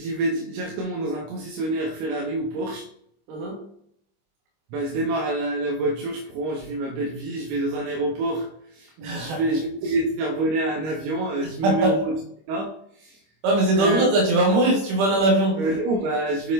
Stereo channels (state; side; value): late; left; 26 ms